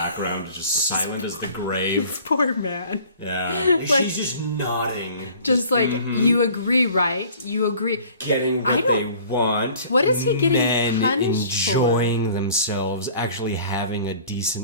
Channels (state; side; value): inverted; both; correlation -0.49